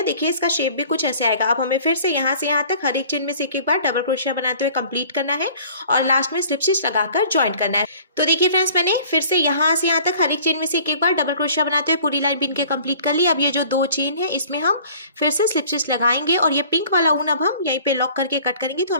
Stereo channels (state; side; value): inverted; both; correlation -0.50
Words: देखिए इसका शेप भी कुछ ऐसे आएगा। अब हमें फिर से यहाँ तक हर एक चेन में से एक एक बार डबल क्रोशिया बनाते हुए कंप्लीट करना है और लास्ट में स्लिप स्टिच लगाकर ज्वाइन करना है। तो देखिए फ्रेंड्स मैंने फिर से यहाँ तक हर एक चेन में से एक एक बार डबल क्रोशिया बनाते हुए पूरी लाइन बीन के कंप्लीट कर ली। अब ये जो 2 चेन है इसमें हम फिर से स्लिप स्टिच लगाएंगे और ये पिंक वाला ऊन अब हम यहीं पे लॉक करके कट करेंगे। तो